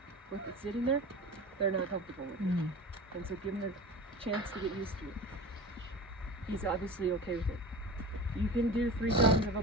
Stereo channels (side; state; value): both; normal; correlation 0.33